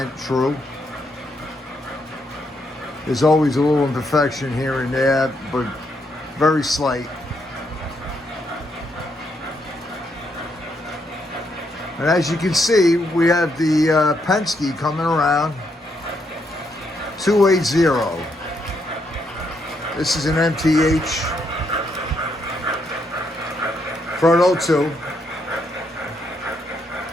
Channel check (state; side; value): normal; both; correlation 0.77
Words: true. There's always a little imperfection here and there, but very slight. And as you can see, we have the Penske coming around, 280. This is an MTH Proto 2